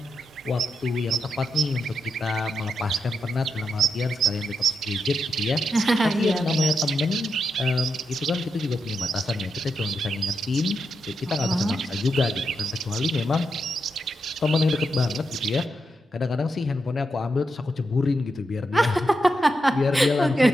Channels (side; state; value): both; normal; correlation 0.84